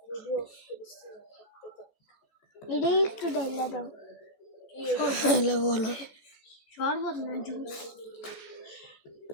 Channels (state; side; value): late; right; 14 ms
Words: ভিডিও করিস এটা একটু ডাইলা দাও হ্যালো বলো শরবত না জুস